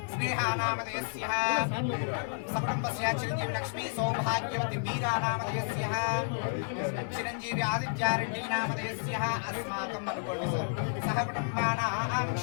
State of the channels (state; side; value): silent; right; digital silence